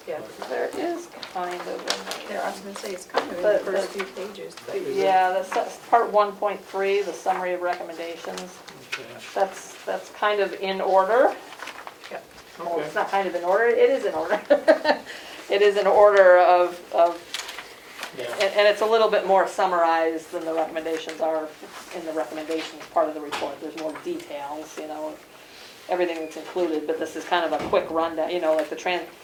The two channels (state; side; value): identical; both; correlation 1.00